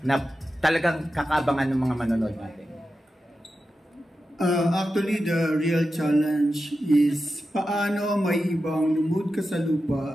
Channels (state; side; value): normal; both; correlation 0.91